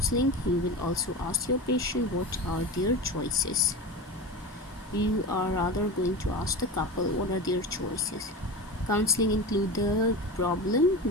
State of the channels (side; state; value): both; normal; correlation 0.27